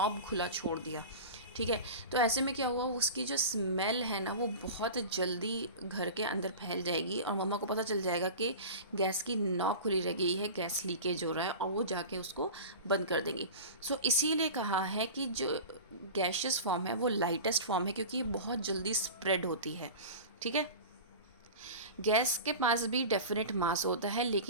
खुला छोड़ दिया, ठीक है। तो ऐसे में क्या हुआ, उसकी जो स्मेल है ना वो बहुत जल्दी घर के अंदर फैल जाएगी और मम्मा को पता चल जाएगा कि गैस की नॉब खुली रह गई है, गैस लीकेज हो रहा है, और वो जाके उसको बंद कर देंगी। सो इसीलिए कहा है कि जो गैशियस फॉर्म है वो लाइटेस्ट फॉर्म है, क्योंकि ये बहुत जल्दी स्प्रेड होती है, ठीक है। गैस के पास भी डेफिनेट मास होता है,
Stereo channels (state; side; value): inverted; both; correlation -0.33